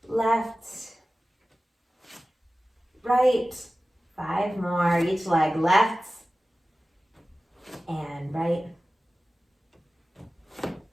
left, right. 5 more. Each leg, left and right,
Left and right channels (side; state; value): both; normal; correlation 0.96